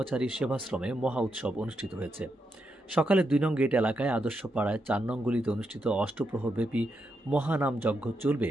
সেবাশ্রমে মহা উৎসব অনুষ্ঠিত হয়েছে। সকালে ২ নং গেট এলাকায় আদর্শ পাড়ায় ৪ নং গলিতে অনুষ্ঠিত অষ্টপ্রহরব্যাপী মহানাম যজ্ঞ চলবে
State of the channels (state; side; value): normal; both; correlation 0.83